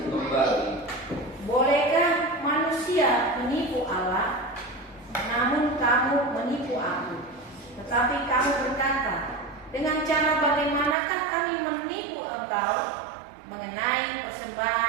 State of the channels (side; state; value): left; drops out; at 11.0 s